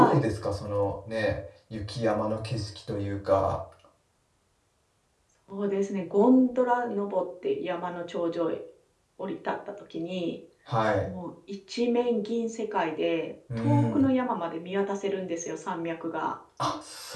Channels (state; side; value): identical; both; correlation 1.00